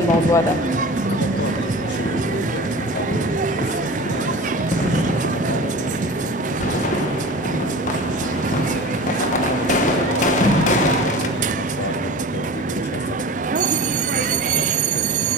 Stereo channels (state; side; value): normal; both; correlation 0.35